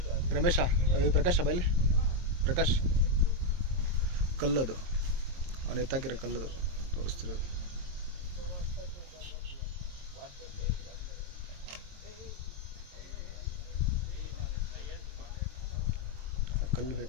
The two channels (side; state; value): left; late; 22 ms